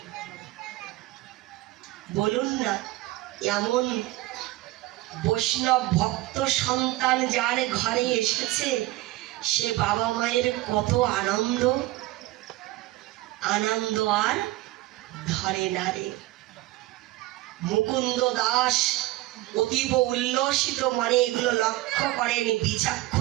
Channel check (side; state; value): left; quieter; 18.0 dB